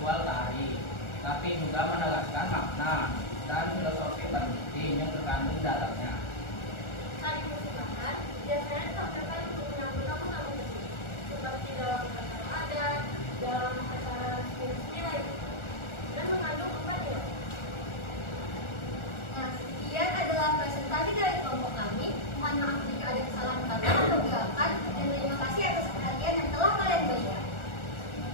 tari, tapi juga menegaskan makna dan filosofi penting yang terkandung dalamnya. Tari persembahan biasanya ditampilkan untuk menyambut tamu-tamu penting, seperti dalam acara adat, dalam acara resmi lain, dan mengandung 4 nilai. Nah, sekian adalah presentasi dari kelompok kami. Mohon maaf jika ada kesalahan kata atau gerakan, dan terima kasih atas perhatian yang telah kalian berikan.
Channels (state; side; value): late; right; 1.4 ms